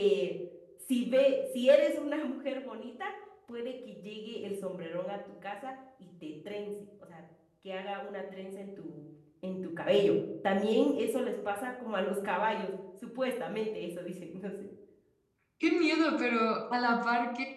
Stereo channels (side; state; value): both; identical; correlation 1.00